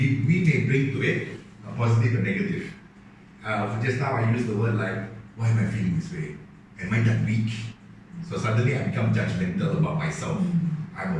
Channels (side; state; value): both; identical; correlation 1.00